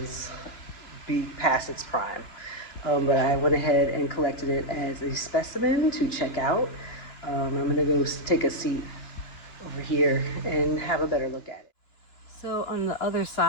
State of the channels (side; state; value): right; late; 2.9 ms